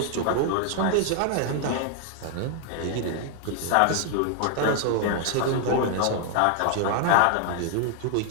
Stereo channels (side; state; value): both; different; correlation 0.00